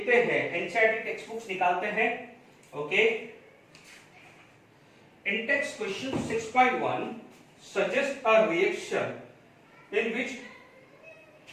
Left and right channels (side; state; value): both; identical; correlation 1.00